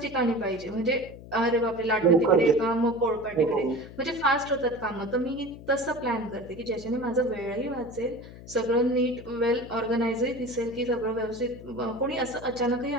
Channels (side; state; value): left; noise; hum, 16 dB below the sound